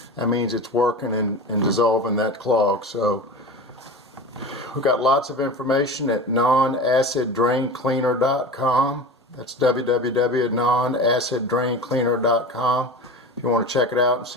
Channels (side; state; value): both; normal; correlation 0.30